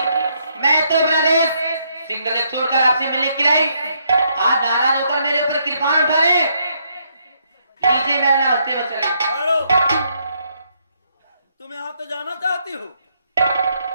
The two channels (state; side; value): inverted; both; correlation -0.74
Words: मैं तो प्रदेश सिंगल एक छोड़कर आपसे मिलने के लिए आई। आज नाराज होकर मेरे ऊपर कृपाण उठा रहे। लीजिए मेरा नाश्ते में चले। हेलो, तुम यहाँ तो जाना चाहती हो?